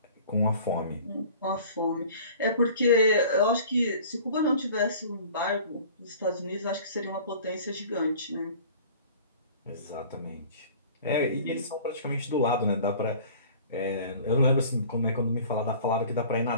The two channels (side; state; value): both; inverted; correlation -0.46